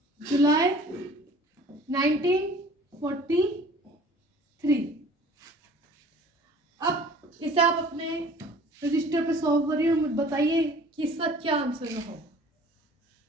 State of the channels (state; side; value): normal; both; correlation 0.48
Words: जुलाई 1943। अब इसे आप अपने रजिस्टर पे सॉल्व करिए और मुझे बताइए कि इसका क्या आंसर होगा।